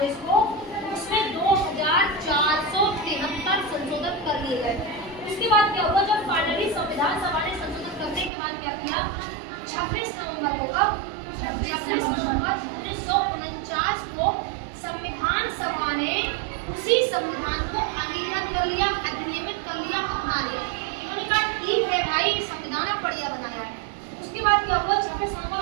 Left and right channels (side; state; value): left; drops out; at 8.3 s